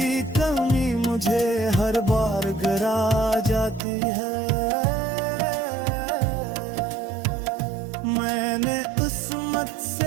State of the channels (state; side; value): drops out; left; at 3.8 s